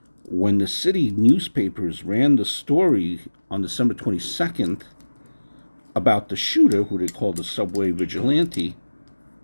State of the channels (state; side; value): inverted; both; correlation -1.00